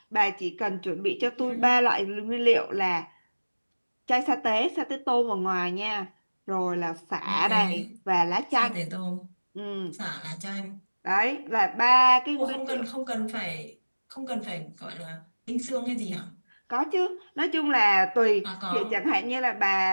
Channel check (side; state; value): both; inverted; correlation -1.00